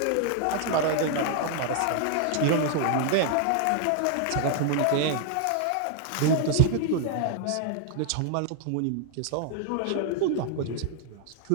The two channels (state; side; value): different; both; correlation 0.00